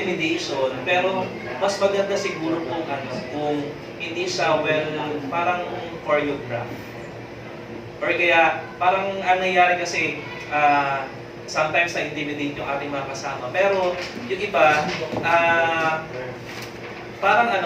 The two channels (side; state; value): both; identical; correlation 1.00